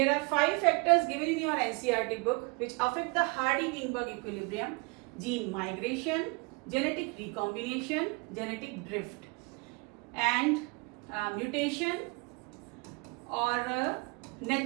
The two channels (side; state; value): left; quieter; 29.2 dB